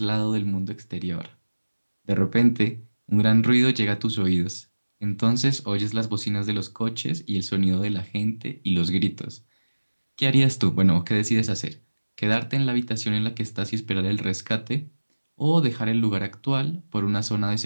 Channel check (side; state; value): both; inverted; correlation -1.00